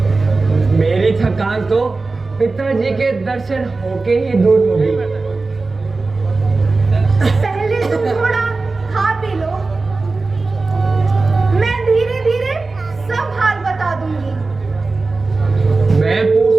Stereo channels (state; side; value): quieter; left; 3.7 dB